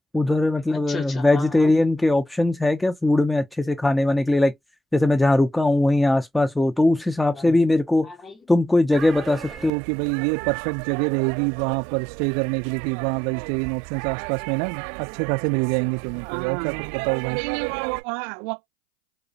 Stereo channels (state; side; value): drops out; left; at 9.7 s